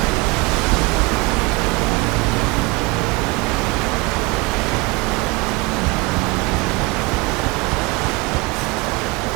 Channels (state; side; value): quieter; left; 24.9 dB